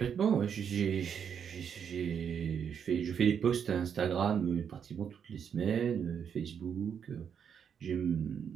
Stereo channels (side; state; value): left; quieter; 7.6 dB